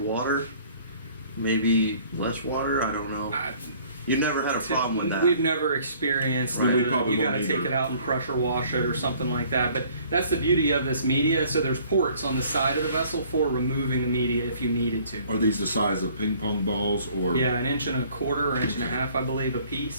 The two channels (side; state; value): both; inverted; correlation -0.56